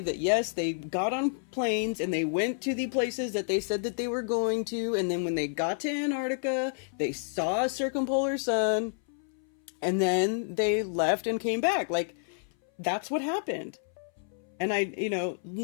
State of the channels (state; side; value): silent; right; 58 dB below the other